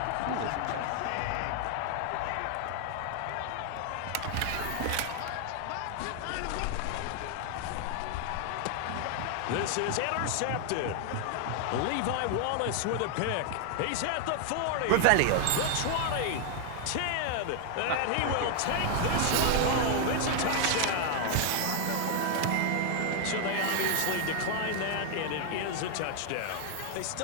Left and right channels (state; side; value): different; both; correlation 0.00